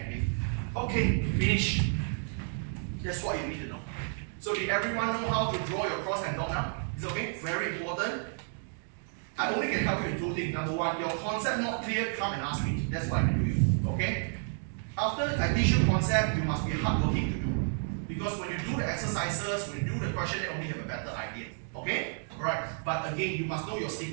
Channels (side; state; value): left; silent; 57 dB below the other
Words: Okay, finish. That's what you need to know. So did everyone know how to draw your cross and dot now? Is it okay? Very important. I only can help you in two things. Number one, your concept not clear, come and ask me. That's what I can do you. Okay? After I teach you concept, you must be hardworking to do. Because when you do the exercises, when you do the question, you only have a better idea. Okay? Alright. But again, you must know your